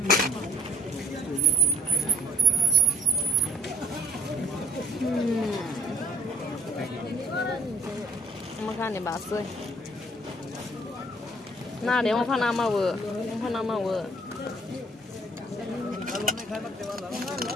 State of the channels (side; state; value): both; normal; correlation 0.56